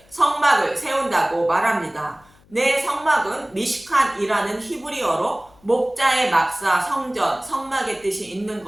성막을 세운다고 말합니다. 내 성막은 미시칸이라는 히브리어로 목자의 막사, 성전, 성막의 뜻이 있는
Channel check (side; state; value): left; noise; hum, 29 dB below the sound